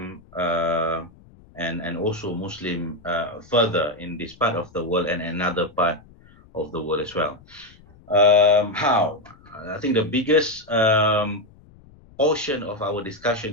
and also Muslim further in this part of the world and another part of the world as well. How? I think the biggest portion of our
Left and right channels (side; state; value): left; noise; rumble, 26 dB below the sound